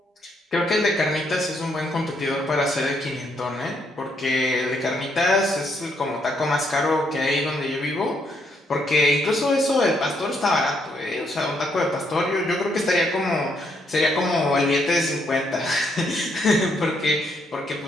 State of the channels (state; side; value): normal; both; correlation 0.74